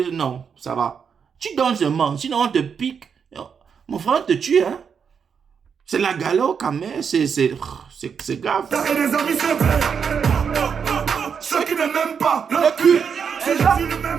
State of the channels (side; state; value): left; quieter; 6.7 dB